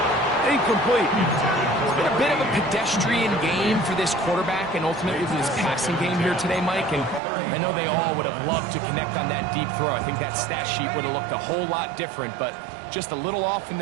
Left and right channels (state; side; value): drops out; left; at 7.2 s